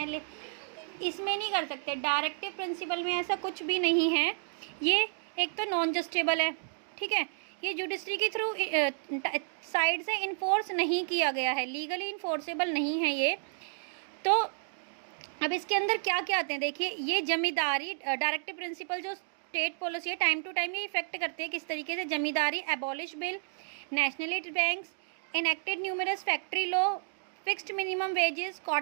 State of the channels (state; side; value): silent; left; digital silence